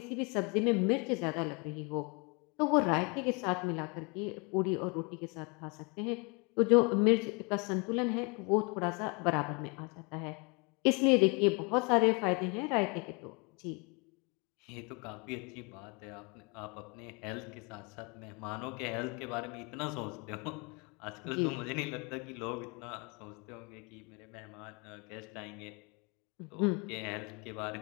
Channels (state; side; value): quieter; right; 31.8 dB